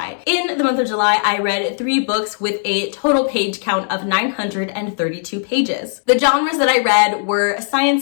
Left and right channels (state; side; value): silent; right; digital silence